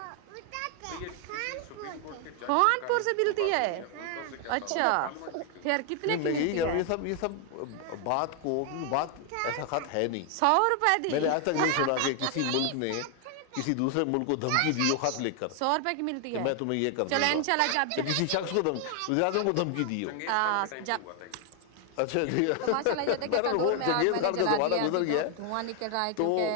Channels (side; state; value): both; different; correlation 0.00